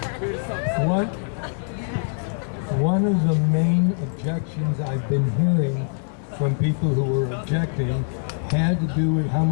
One of the main objections I've been hearing from people who were objecting had to do with how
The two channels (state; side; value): silent; right; 63 dB below the other